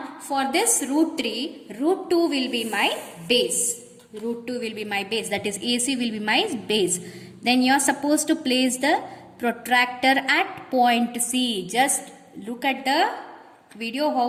for this root 3, root 2 will be my base. Root 2 will be my base, that is AC will be my base. Then you are supposed to place the protractor at point C. Just look at the video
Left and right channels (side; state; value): both; identical; correlation 1.00